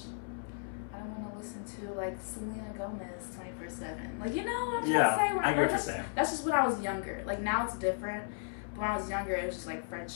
I don't want to listen to like Selena Gomez 24/7. Like what I'm trying to say? I get what you're saying. That's just when I was younger. Like now it's different. But when I was younger, it was just like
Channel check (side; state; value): right; silent; 55 dB below the other